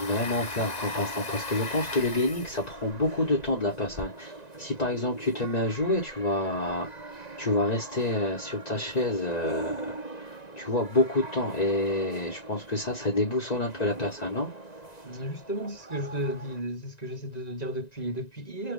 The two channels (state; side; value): late; right; 1.9 ms